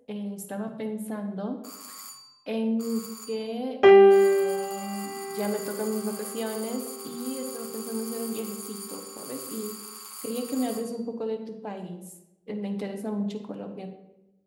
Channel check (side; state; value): both; identical; correlation 1.00